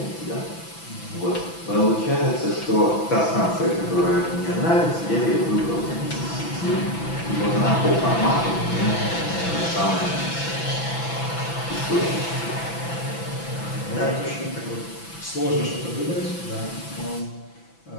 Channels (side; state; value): right; late; 6.0 ms